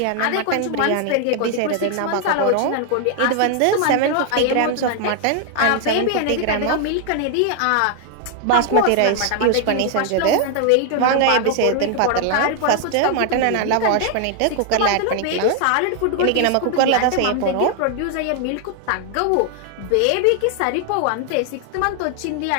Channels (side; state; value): both; different; correlation 0.00